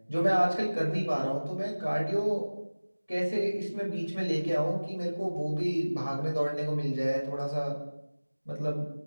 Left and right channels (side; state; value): both; inverted; correlation -1.00